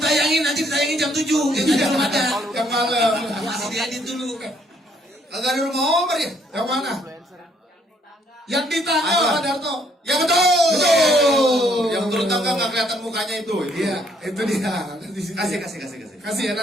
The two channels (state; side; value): normal; both; correlation 0.67